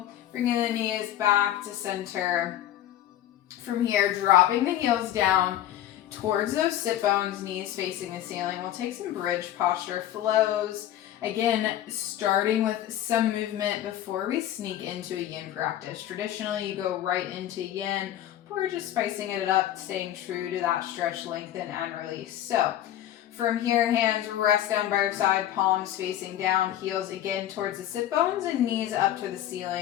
bringing the knees back to center. From here, dropping the heels down towards those sit bones, knees facing the ceiling. We'll take some bridge posture flows. Again, starting with some movement before we sneak into a yin practice. Traditionally, you go right into yin, but we're just spicing it up, staying true to that stretch, lengthen, and release. So, from here, hands rest down by your side, palms facing down, heels again towards the sit bones and knees up to the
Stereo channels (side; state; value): right; quieter; 12.3 dB